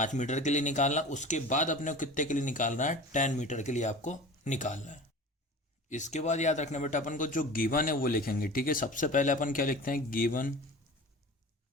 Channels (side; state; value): both; normal; correlation 0.37